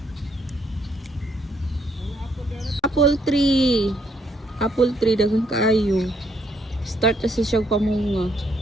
Apple tree. Apple tree, daghang kaayo. Start na siya pamunga.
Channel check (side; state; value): both; normal; correlation 0.71